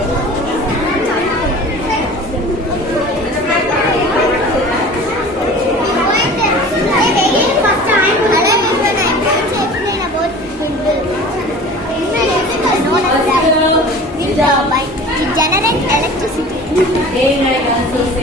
It generates electricity.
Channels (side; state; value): both; normal; correlation 0.41